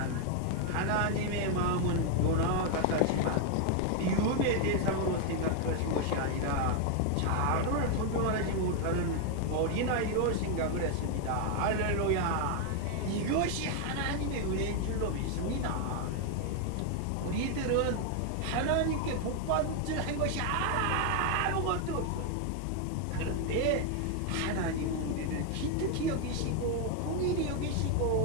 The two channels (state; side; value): different; both; correlation 0.01